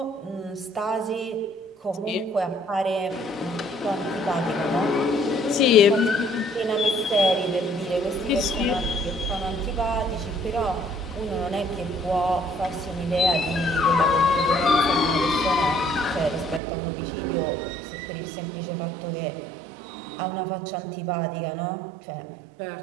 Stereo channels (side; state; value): left; drops out; at 16.6 s